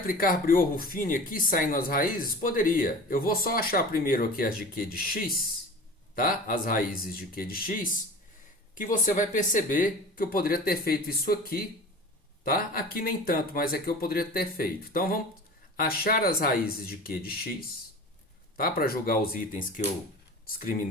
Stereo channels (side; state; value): both; normal; correlation 0.37